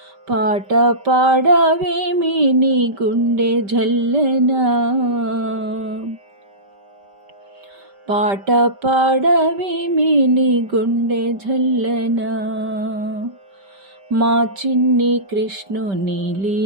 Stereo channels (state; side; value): late; left; 5.1 ms